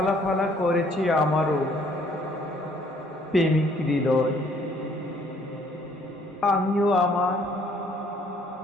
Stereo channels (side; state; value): both; normal; correlation 0.62